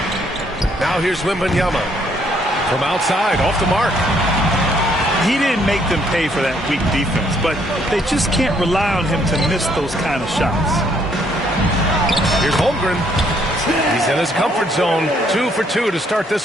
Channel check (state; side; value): normal; both; correlation 0.68